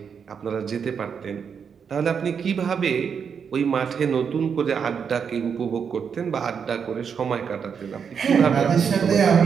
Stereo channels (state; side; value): quieter; left; 6.8 dB